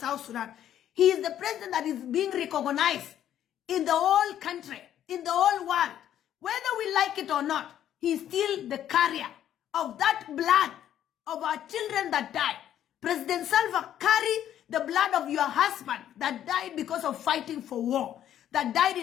Sudan. He is the president that is being recognized in the whole country, in the whole world. Whether we like it or not, he's still the carrier of that blood of our children that died. President Salva carry the blood of your husband that died because of fighting for war, that died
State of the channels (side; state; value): right; quieter; 10.9 dB